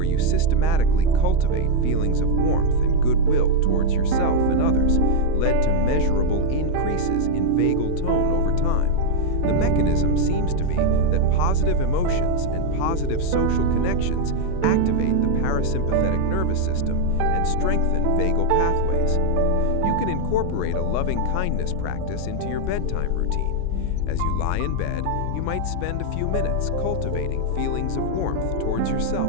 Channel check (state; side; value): different; both; correlation 0.00